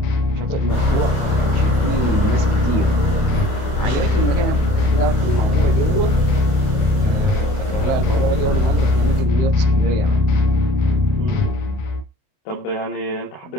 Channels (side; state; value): right; late; 29 ms